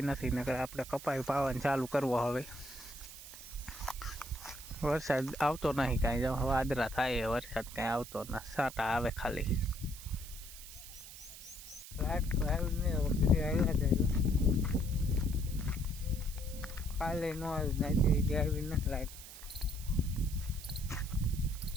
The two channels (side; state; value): right; noise; hiss, 14 dB below the sound